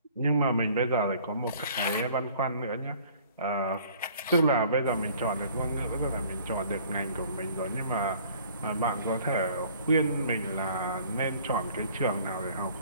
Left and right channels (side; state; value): both; inverted; correlation -0.54